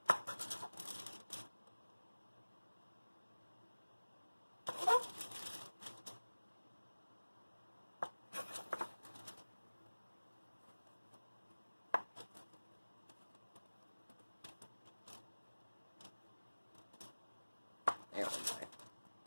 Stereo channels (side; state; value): both; inverted; correlation -1.00